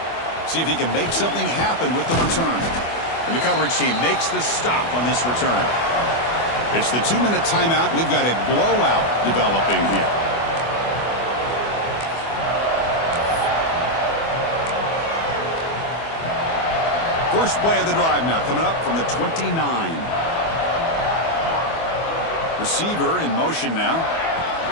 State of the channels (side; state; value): right; late; 24 ms